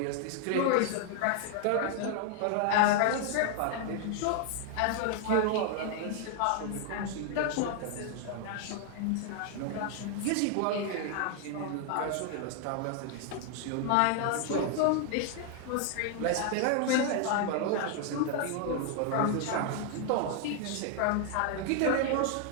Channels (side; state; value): both; different; correlation 0.00